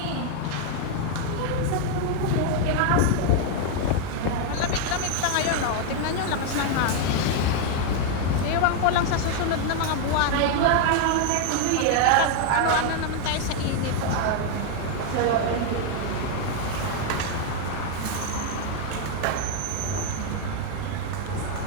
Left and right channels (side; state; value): both; different; correlation 0.01